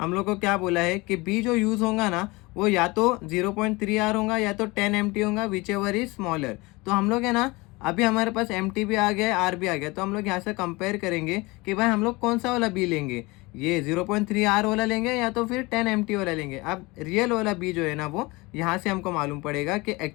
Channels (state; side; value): quieter; right; 23.7 dB